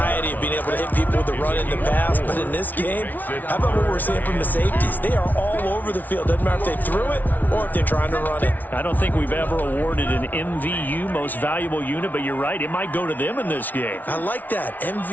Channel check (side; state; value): right; late; 0.081 ms